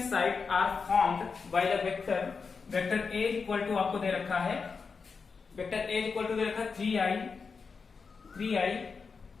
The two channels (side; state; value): right; quieter; 5.1 dB